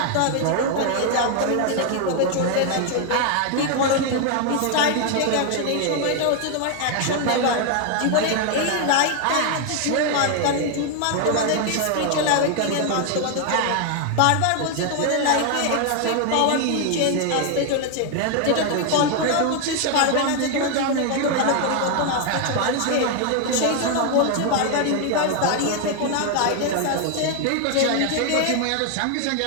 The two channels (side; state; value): both; different; correlation 0.00